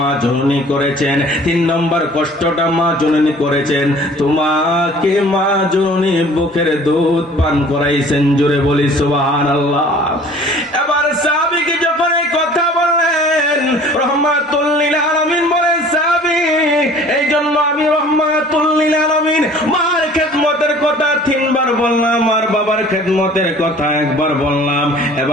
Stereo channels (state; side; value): normal; both; correlation 0.50